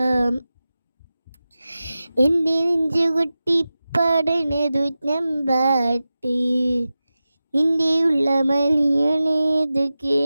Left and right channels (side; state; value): both; inverted; correlation -0.94